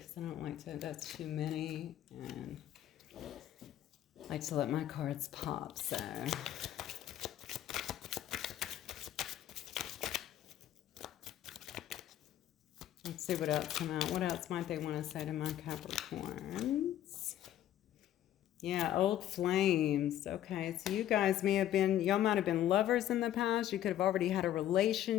I don't like to, that's too many. And I like to let my cards pop, so. Let's see what else come out. What else might they want to say to my Capricorns? Yeah, old flames. Okay, so you guys may have been, y'all might have been lovers in the past. You could have already had a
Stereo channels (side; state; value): right; quieter; 12.0 dB